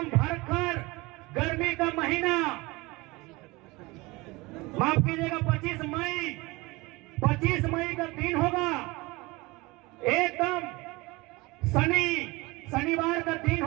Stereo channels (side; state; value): left; quieter; 22.9 dB